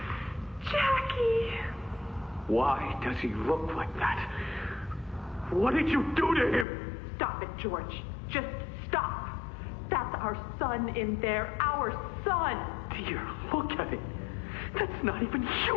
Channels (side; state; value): right; drops out; at 6.7 s